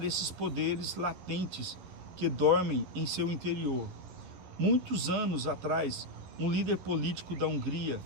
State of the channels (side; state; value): left; late; 11 ms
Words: esses poderes latentes que dormem em seu interior. Muitos anos atrás, um líder político da Hungria,